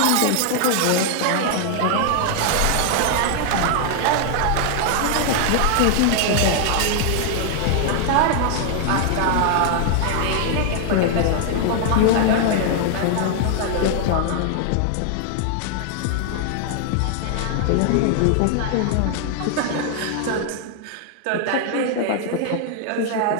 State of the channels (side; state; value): both; different; correlation 0.00